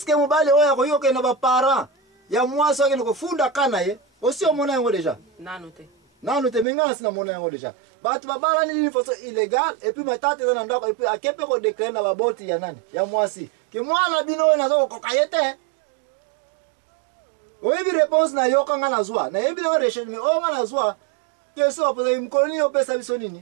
mobali oyo akoki kokende na baparent ya mwasi oyo akende kofunda ka na ye osi omona yango deja nanu te me ngai nasi namona yango deja bato babalani nini façon illégale epuis matata eza na ndako epuis ake mpe kodeklare na baboti ya nani ya mwasi ke mwana bino oyo naza kokoka ye te oyebi réponse na yo kanga nazwa nayebi nango recherche me oyo nga nazwa question bapozaki mokolo nini opesa biso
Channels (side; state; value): left; drops out; at 6.7 s